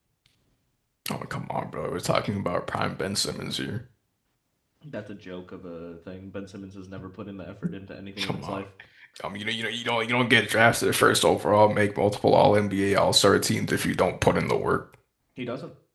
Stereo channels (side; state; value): both; identical; correlation 1.00